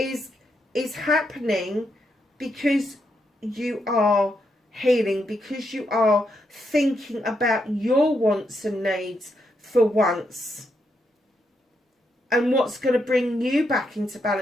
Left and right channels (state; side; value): normal; both; correlation 0.81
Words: happening because you are healing, because you are thinking about your wants and needs for once, and what's going to bring you back into